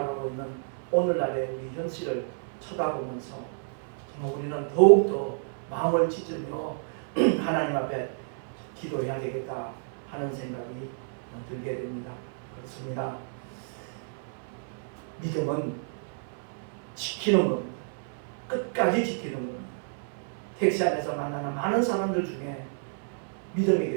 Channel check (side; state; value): left; silent; 58 dB below the other